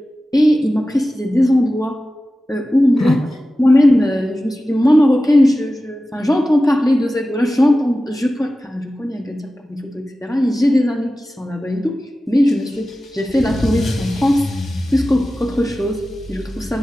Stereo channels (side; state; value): both; normal; correlation 0.95